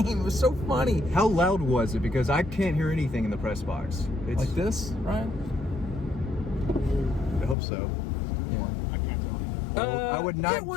was so funny. How loud was it? Because I can't hear anything in the press box. It's Like this, right? I hope so. I can't tell you. I would not. It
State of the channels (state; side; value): drops out; right; at 7.6 s